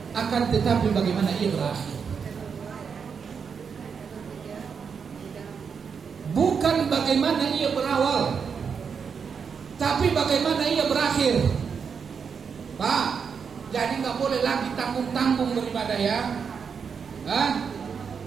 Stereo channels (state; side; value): quieter; left; 6.3 dB